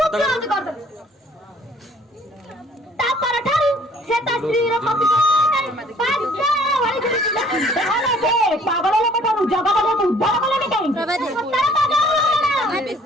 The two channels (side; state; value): both; normal; correlation 0.57